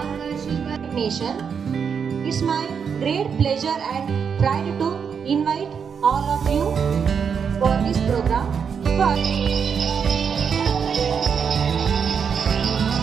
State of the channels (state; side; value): quieter; left; 6.7 dB